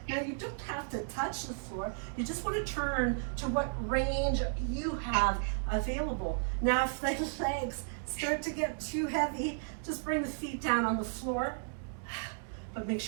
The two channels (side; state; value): left; silent; digital silence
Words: Now you don't have to touch the floor. You just want to turn to what range you have available. Now if the legs start to get too heavy, just bring the feet down on the floor. But make